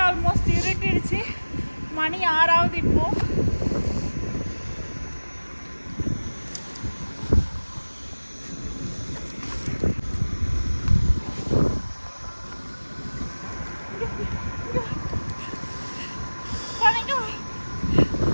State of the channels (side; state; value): both; inverted; correlation -1.00